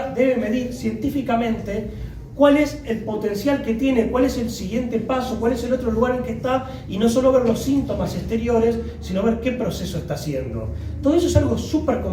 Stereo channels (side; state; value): both; identical; correlation 1.00